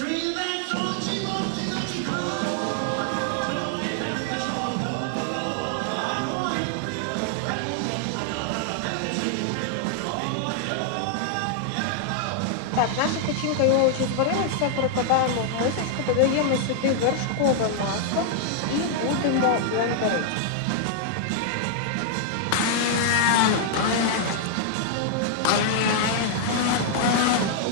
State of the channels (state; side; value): different; both; correlation -0.01